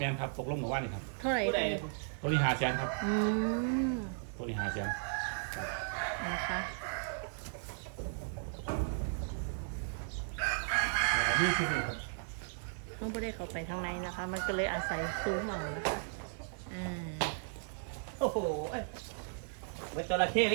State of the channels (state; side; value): silent; left; 54 dB below the other